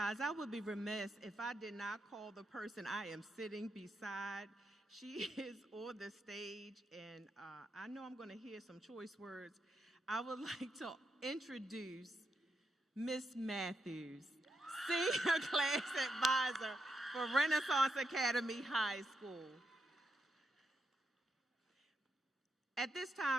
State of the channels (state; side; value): normal; both; correlation 0.83